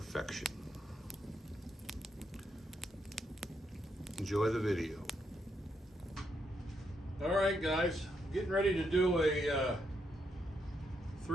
Enjoy the video. All right, guys, getting ready to do a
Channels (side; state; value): both; normal; correlation 0.79